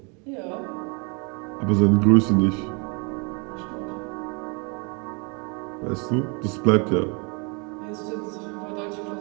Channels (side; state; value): left; quieter; 33.1 dB